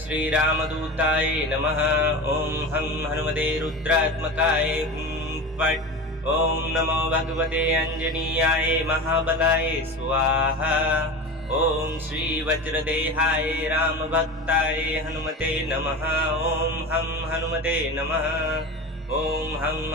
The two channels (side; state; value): both; normal; correlation 0.28